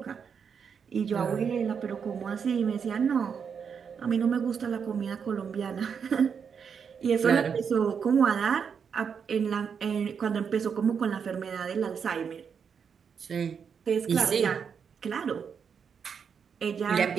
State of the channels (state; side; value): quieter; left; 6.7 dB